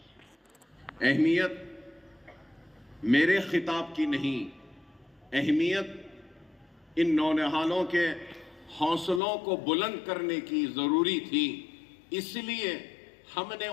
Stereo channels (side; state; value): right; drops out; at 9.2 s